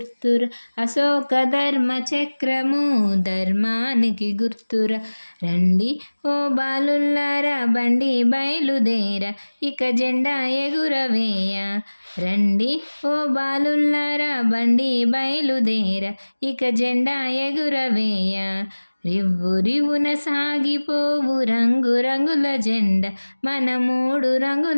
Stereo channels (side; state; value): both; inverted; correlation -1.00